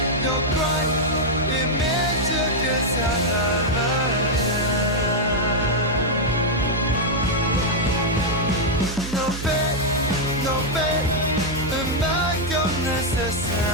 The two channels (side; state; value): right; noise; hum, 8 dB below the sound